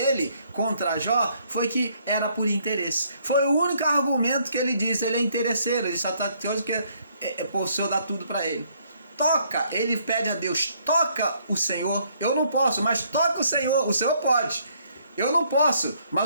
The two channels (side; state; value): both; inverted; correlation -0.67